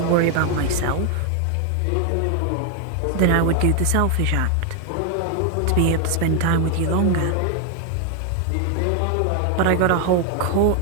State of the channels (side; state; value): both; different; correlation 0.01